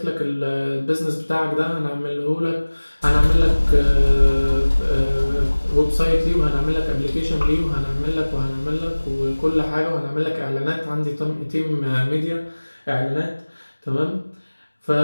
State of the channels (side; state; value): both; inverted; correlation -1.00